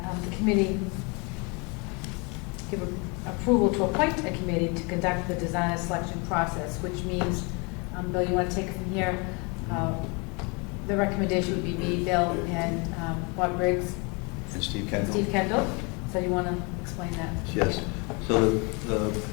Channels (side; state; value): right; quieter; 30.8 dB